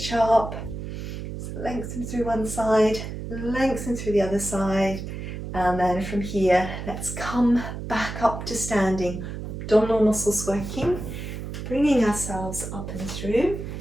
up, lengthen through one side, lengthen through the other side, and then from here, let's come back up to standing. Abdominal muscles working, bringing ourselves up and through.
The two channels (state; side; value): noise; right; hum, 7 dB below the sound